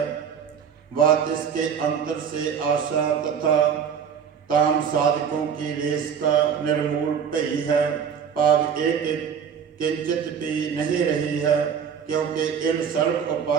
बात इसके अंतर से आशा तथा काम साधकों की रेस का निर्मूल भई है। पाव एक किंचित भी नहीं रही है, क्योंकि इन सर्व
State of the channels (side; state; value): left; quieter; 7.4 dB